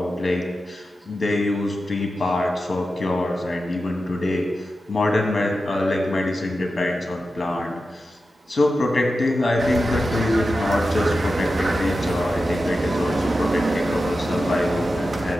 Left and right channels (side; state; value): both; normal; correlation 0.91